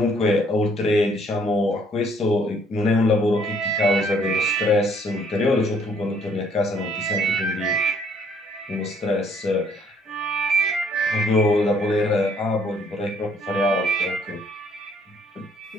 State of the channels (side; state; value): both; normal; correlation 0.64